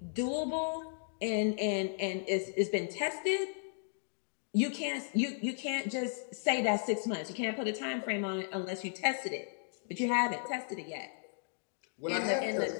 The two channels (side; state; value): right; silent; digital silence